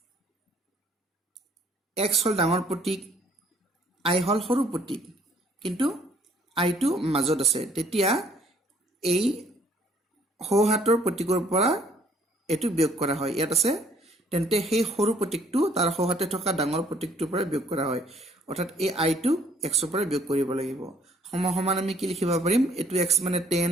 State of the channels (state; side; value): normal; both; correlation 0.62